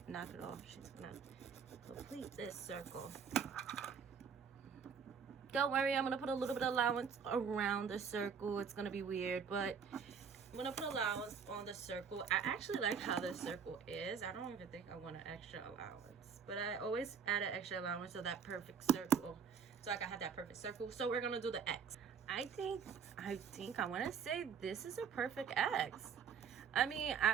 knock it off. She's gonna complete this circle. Don't worry, I'm gonna put a little bit of allowance around the circle. It's gonna be weird, but I'm gonna put allowance on the circle. I actually like how the circle is. I don't even think I want an extra allowance, but I always add an extra allowance to that perfect circle, so I can have that perfect circle. So we're gonna do the X. I think I want to say this is a perfect X. I mean,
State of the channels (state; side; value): quieter; left; 6.6 dB